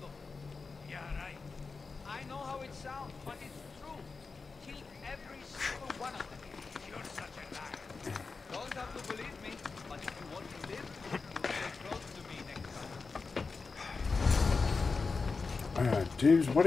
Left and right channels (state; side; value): quieter; right; 4.5 dB